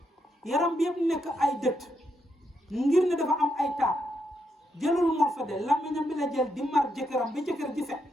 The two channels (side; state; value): both; normal; correlation 0.80